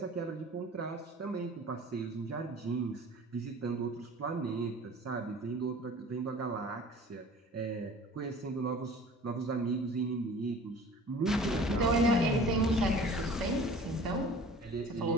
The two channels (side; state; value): both; normal; correlation 0.45